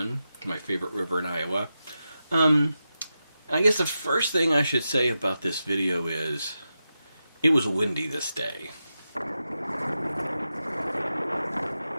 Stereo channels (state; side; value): inverted; both; correlation -0.90